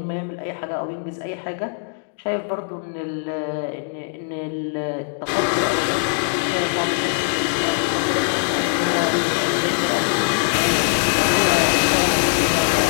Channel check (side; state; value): right; silent; digital silence